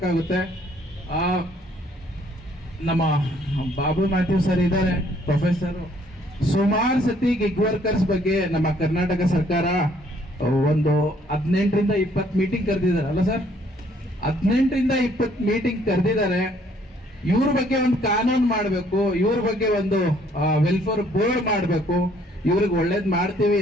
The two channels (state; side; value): normal; both; correlation 0.63